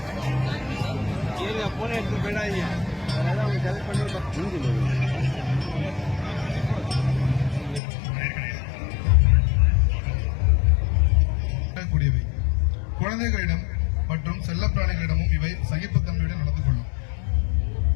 குழந்தைகளிடம் மற்றும் செல்லப்பிராணிகளிடமும் இவை சகிப்புத்தன்மையுடன் நடந்து கொள்ளும்.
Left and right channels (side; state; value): right; drops out; at 7.8 s